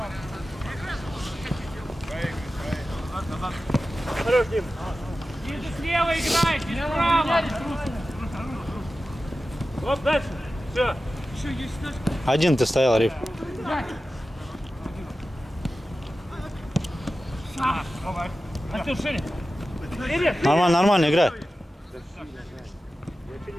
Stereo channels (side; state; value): both; normal; correlation 0.94